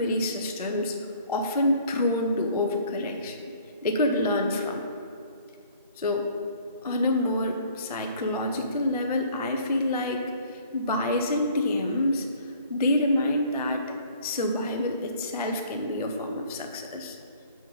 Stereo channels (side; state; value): both; inverted; correlation -0.54